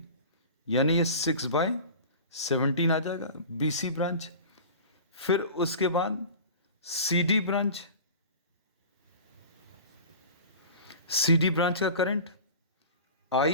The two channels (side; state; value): both; inverted; correlation -0.37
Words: यानी ये 6/17 आ जाएगा BC ब्रांच। फिर उसके बाद CD ब्रांच का current